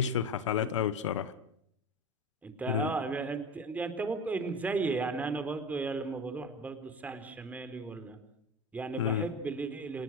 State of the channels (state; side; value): normal; both; correlation 0.28